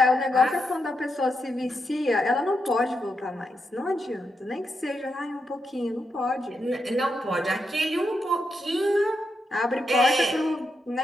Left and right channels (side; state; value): both; normal; correlation 0.84